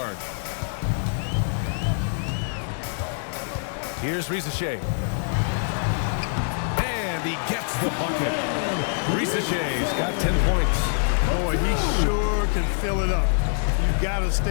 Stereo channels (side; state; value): right; silent; 62 dB below the other